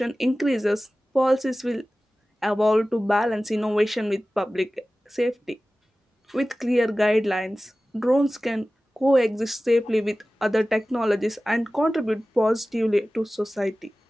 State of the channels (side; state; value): both; normal; correlation 0.96